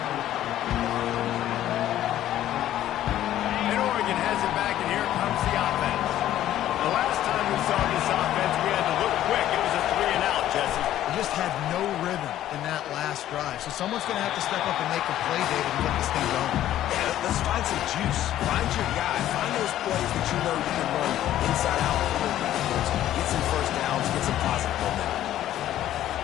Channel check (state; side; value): quieter; right; 12.7 dB